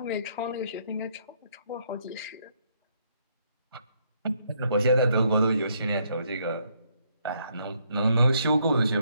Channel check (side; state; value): both; inverted; correlation -0.72